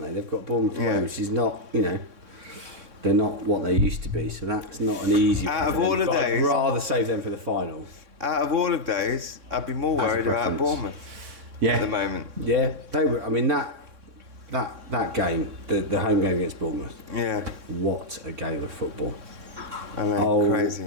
they? They've got Bournemouth away, which is not, they're not what they used to be. So that's not an easy. Out of all of those, I'd rather save them for the final. Out of all of those, I'd be more worried about Bournemouth. Yeah. At the moment. Yeah, they were. I mean that game, the home game against Bournemouth. Yeah. What a game of football! I know, crazy.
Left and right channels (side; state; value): left; late; 3.6 ms